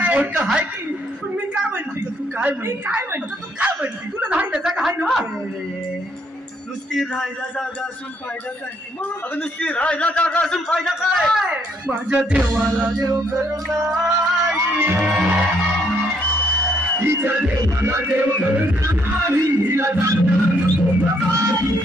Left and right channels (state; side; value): normal; both; correlation 0.70